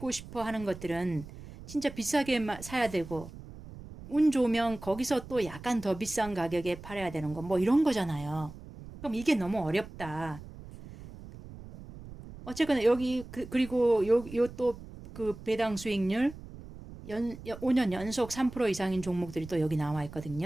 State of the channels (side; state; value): right; noise; rumble, 15 dB below the sound